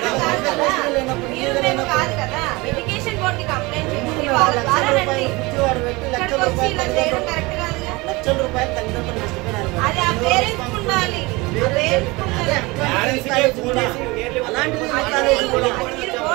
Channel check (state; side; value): quieter; left; 23.6 dB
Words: కాదు కదా, మీరు మేము కాదు కదా. ఎడ్యుకేషన్ బోర్డుకి కంప్లైంట్ చేసి వాళ్ళ ద్వారా రండి. ఇక్కడికి వచ్చి ఇలా చేయడం కరెక్ట్ కాదుగా. అది ఆ పేరెంట్స్ ఉండాలి, మీరు